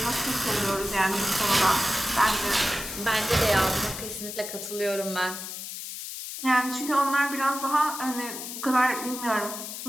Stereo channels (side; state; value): left; noise; hiss, 8 dB below the sound